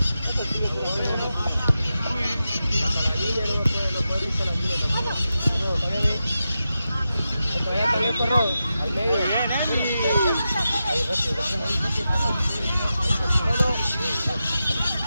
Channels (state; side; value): inverted; both; correlation -0.90